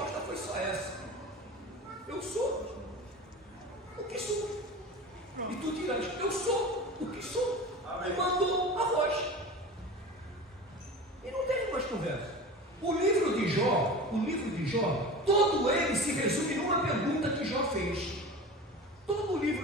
foi só essa: eu sou o que sou. E tu dirás: eu sou o que sou. E mandou a voz. E não teve mais conversa. O livro de Jó, todo ele se resume numa pergunta que Jó fez. Todo o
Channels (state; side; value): normal; both; correlation 0.33